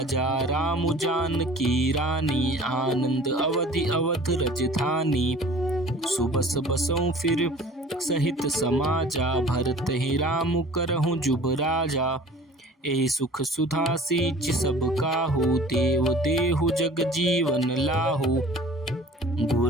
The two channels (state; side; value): normal; both; correlation 0.46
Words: राम जानकी रानी, आनंद अवधि अवध रजधानी। सुबस बसऊं फिर सहित समाजा, भरत ही राम करहूँ जुब राजा। एहि सुख सुधा सींच सब काहू, देव देहु जग जीवन लाहू।